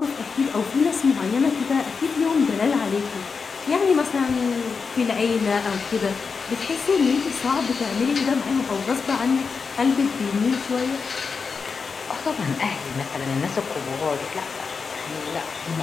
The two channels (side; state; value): right; quieter; 5.2 dB